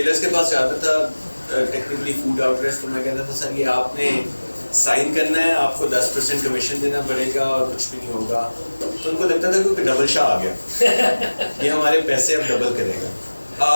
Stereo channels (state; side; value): inverted; both; correlation -1.00